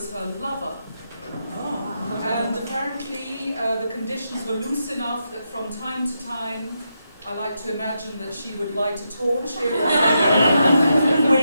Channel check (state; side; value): inverted; both; correlation -0.84